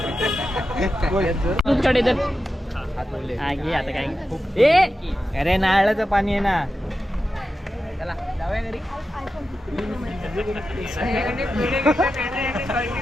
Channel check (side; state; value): both; normal; correlation 0.91